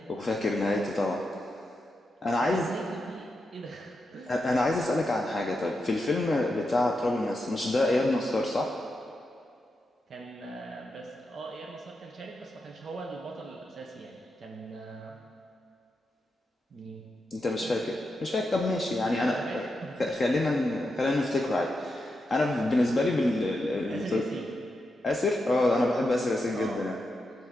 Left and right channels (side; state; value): both; normal; correlation 0.87